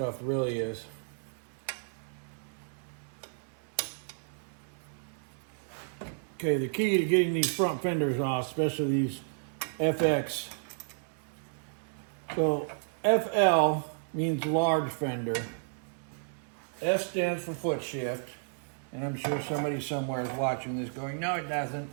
really is. Okay, the key to getting these front fenders off, especially these FX. So FL means large fender. F stands for foot shift. And I'm sure somebody somewhere is watching this going, no, it doesn't.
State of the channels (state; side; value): silent; left; digital silence